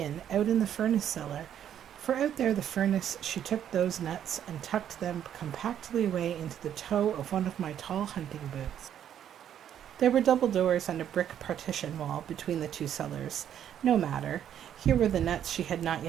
out in the furnace cellar, for out there the furnace she took those nuts and tucked them compactly away into the toe of one of my tall hunting boots. There were double doors and a brick partition wall between the two cellars. No matter. Here were the nuts she had not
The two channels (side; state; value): left; quieter; 9.9 dB